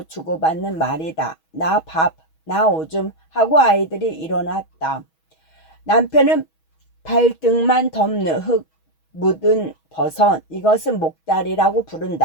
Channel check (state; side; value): late; right; 6.2 ms